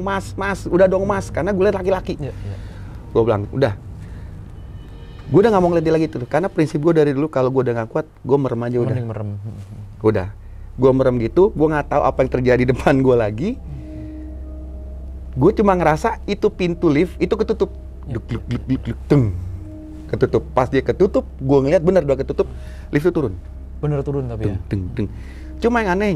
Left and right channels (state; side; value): identical; both; correlation 1.00